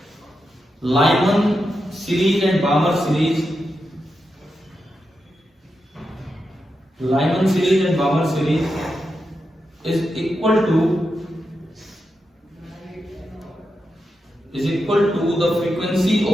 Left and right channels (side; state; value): both; normal; correlation 0.87